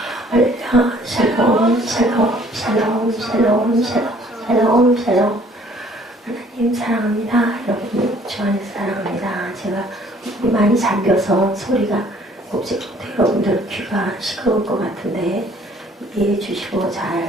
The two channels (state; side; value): normal; both; correlation 0.57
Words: 할렐루야 샬롬 샬롬 샬롬 샬롬 샬롬 샬롬 샬롬. 하나님 사랑합니다. 여러분 주 안에서 사랑합니다. 제가 많이 잠겨서 소리가 곱씹고 여러분들 귀가 시끄러울 것 같은데 이해해 주시고